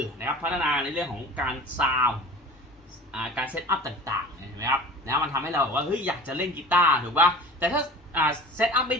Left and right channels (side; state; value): both; normal; correlation 0.40